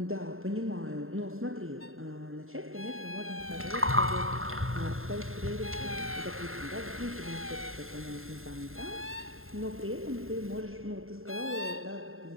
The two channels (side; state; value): left; late; 0.61 ms